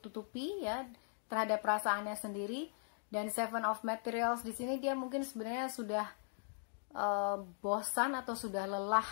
ya terhadap perasaannya sendiri. Dan Seven of Materials di sini dia mungkin sebenarnya sudah bosan atau sudah lelah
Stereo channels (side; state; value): right; silent; digital silence